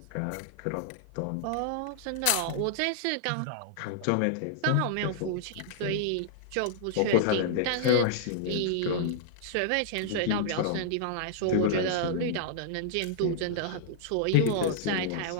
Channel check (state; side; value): different; both; correlation -0.01